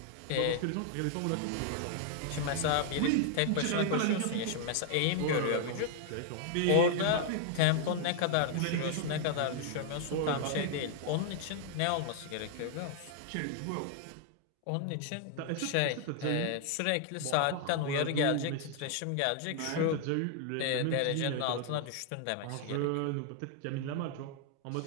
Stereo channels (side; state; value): both; different; correlation 0.00